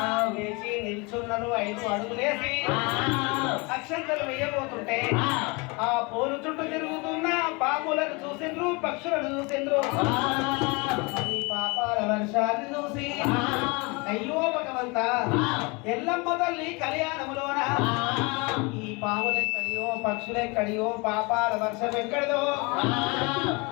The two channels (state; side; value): quieter; right; 28.2 dB